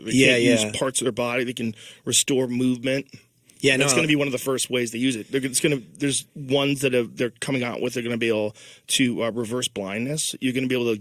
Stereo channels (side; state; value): both; identical; correlation 1.00